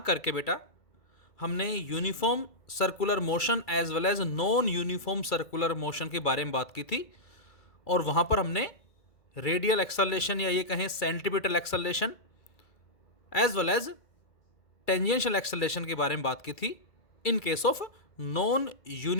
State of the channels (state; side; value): late; right; 2.3 ms